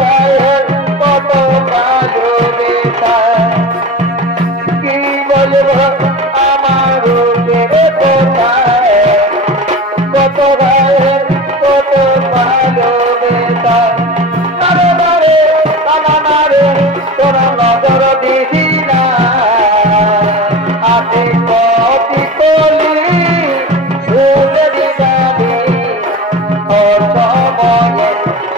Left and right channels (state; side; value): normal; both; correlation 0.32